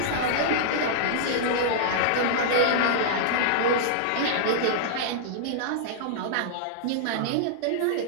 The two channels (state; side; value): different; both; correlation -0.02